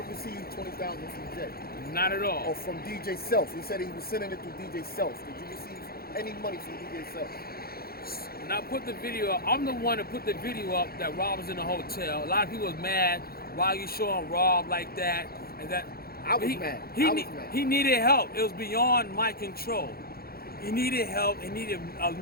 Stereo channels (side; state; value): right; late; 0.44 ms